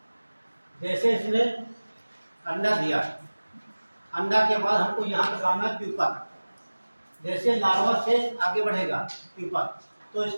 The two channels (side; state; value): both; inverted; correlation -1.00